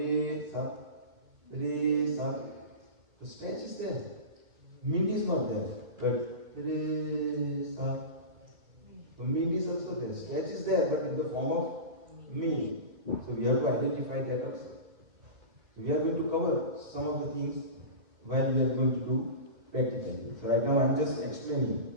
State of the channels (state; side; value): late; left; 2.4 ms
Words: sa, the stretch is there. Mint is not there, but re sa. So mint is also there. Stretch is there, but in the form of mint. So we have to identify that also. So we are going to cover some of the things while we are going to do practically. So right now I am just